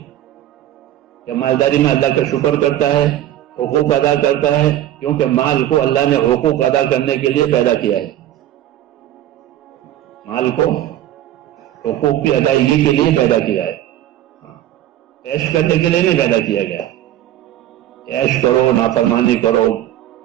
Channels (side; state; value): left; quieter; 12.7 dB